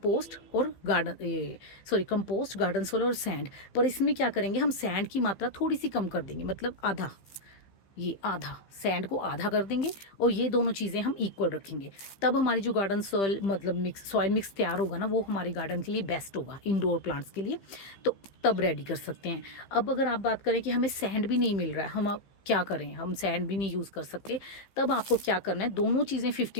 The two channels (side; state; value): right; late; 15 ms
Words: और कंपोस्ट, गार्डन सॉइल और सैंड। पर इसमें क्या करेंगे, हम सैंड की मात्रा थोड़ी सी कम कर देंगे, मतलब आधा, ये आधा सैंड को आधा कर देंगे और ये दोनों चीज़ें हम इक्वल रखेंगे। तब हमारी जो गार्डन सॉइल मतलब सॉइल मिक्स तैयार होगा ना, वो हमारे गार्डन के लिए बेस्ट होगा, इंडोर प्लांट्स के लिए। तो तब रेडी कर सकते हैं। अब अगर आप बात करें कि हमें सैंड भी नहीं मिल रहा है, हम अब क्या करें, हम सैंड भी नहीं यूज़ कर सकते, तब आपको क्या करना है, दोनों चीज़ें